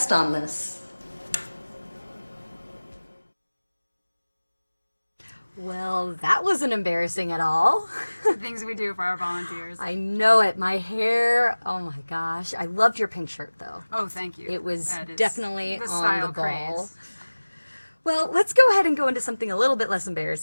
on this. Well, that wasn't embarrassing at all. The things we do for our volunteers. I know it. My hair, oh my gosh. I loved your pink shirt, though. Oh, thank you. It was That is definitely the on style the ball. craze. Well, let's go ahead and go into something a little bit less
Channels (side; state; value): both; inverted; correlation -1.00